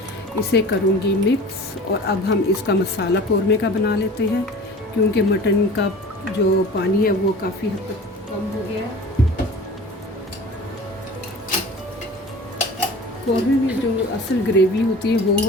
इसे करूंगी मिक्स। और अब हम इसका मसाला कौरमे का बना लेते हैं क्योंकि मटन का जो पानी है वो काफ़ी हद तक कम हो गया है। कौरमे में जो असल ग्रेवी होती है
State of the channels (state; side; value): normal; both; correlation 0.40